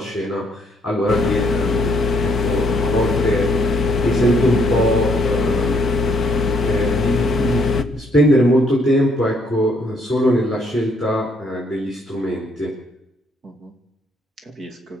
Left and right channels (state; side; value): normal; both; correlation 0.69